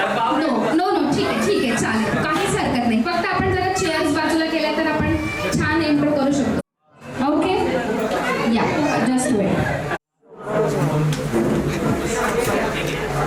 नो नो ठीक आहे चालेल, काहीच हरकत नाही. फक्त आपण जरा चेअर्स बाजूला केल्या तर आपण छान एंट्रो करू शकतो. ओके, या जस्ट वेट.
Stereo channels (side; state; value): both; identical; correlation 1.00